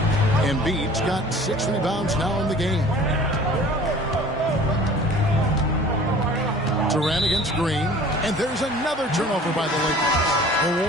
Embiid's got 6 rebounds now in the game. Durant against Green. And there's another turnover by the Lakers. The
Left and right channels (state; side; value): normal; both; correlation 0.47